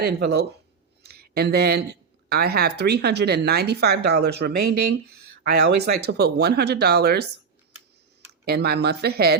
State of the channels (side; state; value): left; quieter; 5.7 dB